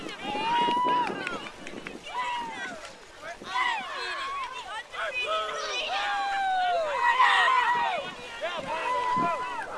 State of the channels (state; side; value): identical; both; correlation 1.00